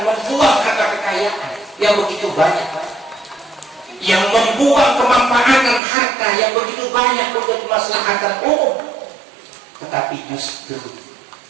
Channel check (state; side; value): drops out; left; at 5.8 s